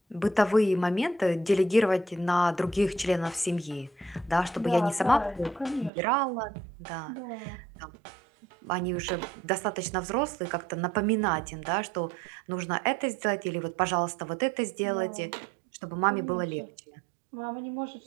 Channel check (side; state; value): left; drops out; at 5.9 s